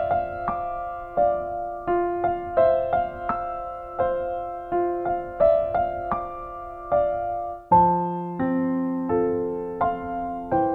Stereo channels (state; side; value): identical; both; correlation 1.00